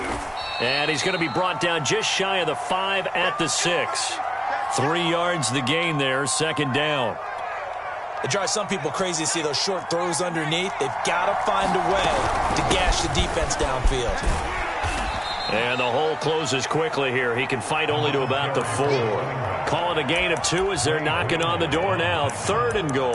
And he's going to be brought down just shy of the 5 at the 6. 3 yards the gain there, second down. It drives some people crazy to see those short throws underneath. They've got to find a way to gash the defense downfield. And the hole closes quickly here. He can fight only to about the 4. Call it a gain of 2 as they're knocking on the door now. 3rd and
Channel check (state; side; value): identical; both; correlation 1.00